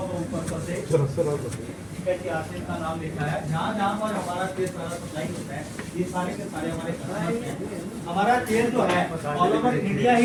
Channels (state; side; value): identical; both; correlation 1.00